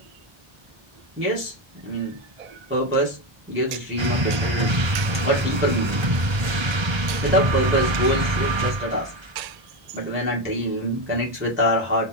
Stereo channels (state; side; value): late; left; 1.3 ms